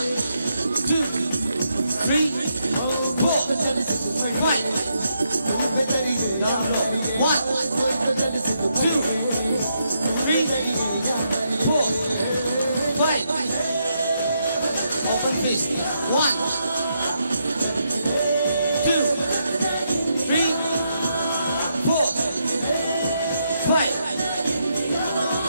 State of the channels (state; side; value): inverted; both; correlation -0.80